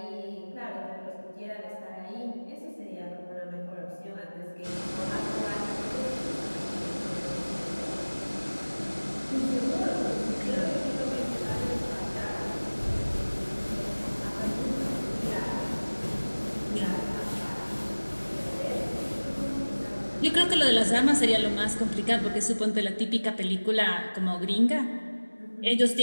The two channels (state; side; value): inverted; both; correlation -1.00